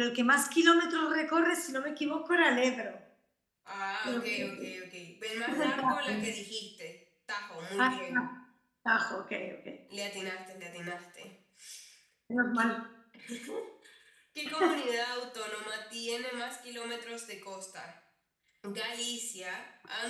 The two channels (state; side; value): identical; both; correlation 1.00